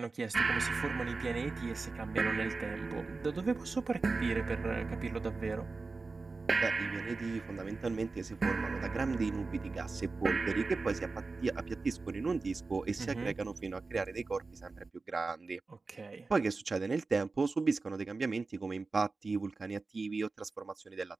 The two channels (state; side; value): quieter; left; 3.9 dB